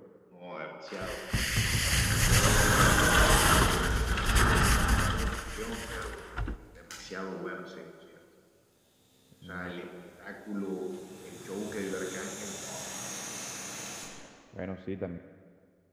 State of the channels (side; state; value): both; identical; correlation 1.00